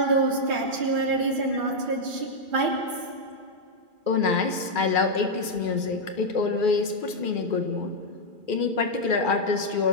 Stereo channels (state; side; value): late; left; 2.4 ms